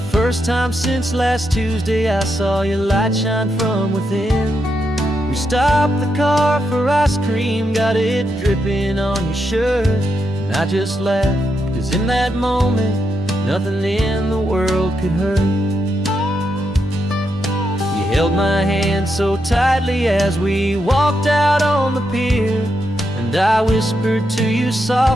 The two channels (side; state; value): both; normal; correlation 0.83